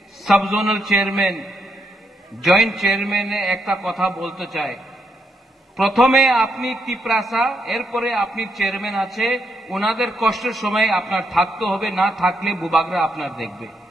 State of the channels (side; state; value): both; normal; correlation 0.79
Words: sub zonal chairman, joint চেয়ারম্যানে একটা কথা বলতে চাই। প্রথমে আপনি ত্রিপুরাসা, এরপরে আপনি চেয়ারম্যান আছে, ওনাদের কষ্টের সময় আপনার থাকতে হবে, না থাকলে বুবাগরা আপনার দেখবে।